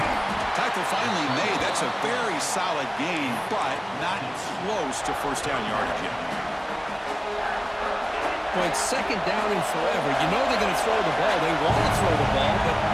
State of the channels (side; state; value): both; identical; correlation 1.00